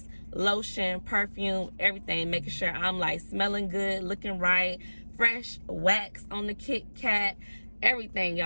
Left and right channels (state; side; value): inverted; both; correlation -1.00